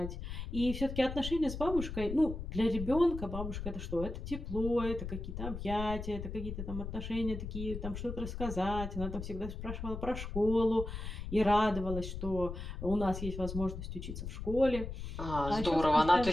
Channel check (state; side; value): noise; left; rumble, 7 dB below the sound